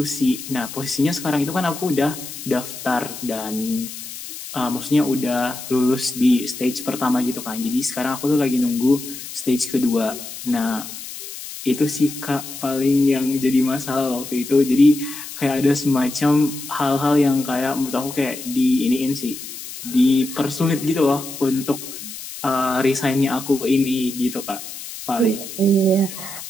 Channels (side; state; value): left; noise; hiss, 11 dB below the sound